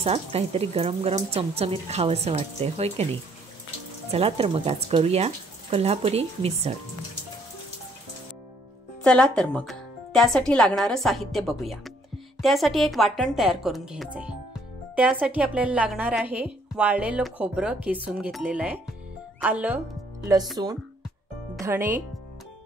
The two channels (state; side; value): normal; both; correlation 0.65